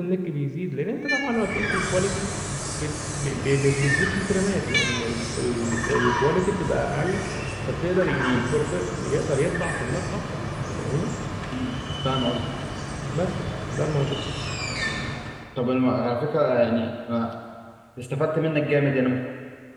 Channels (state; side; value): identical; both; correlation 1.00